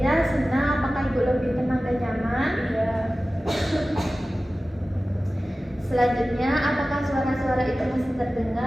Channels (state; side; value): normal; both; correlation 0.96